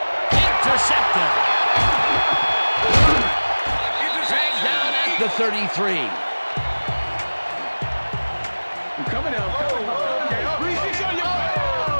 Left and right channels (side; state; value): both; inverted; correlation -1.00